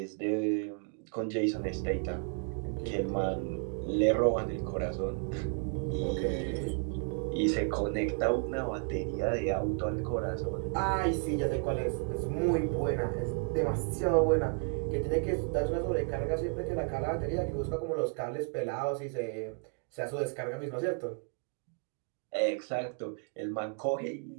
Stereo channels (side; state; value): left; quieter; 39.4 dB